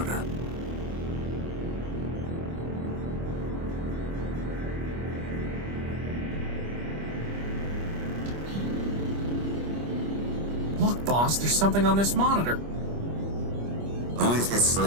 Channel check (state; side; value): late; left; 25 ms